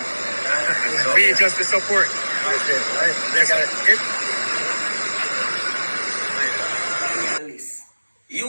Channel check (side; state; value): both; inverted; correlation -1.00